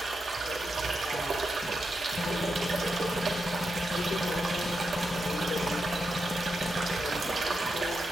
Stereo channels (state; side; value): normal; both; correlation 0.86